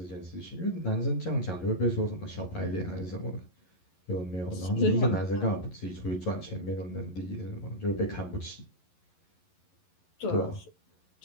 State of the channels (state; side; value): late; right; 11 ms